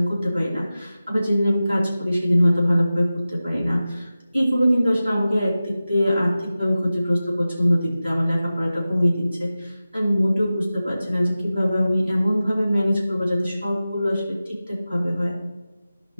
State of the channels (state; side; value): inverted; both; correlation -0.95